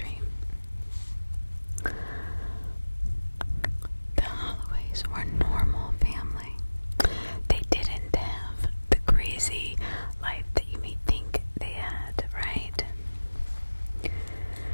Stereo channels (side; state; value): both; inverted; correlation -1.00